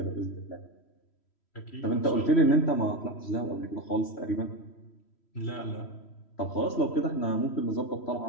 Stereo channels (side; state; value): right; late; 3.1 ms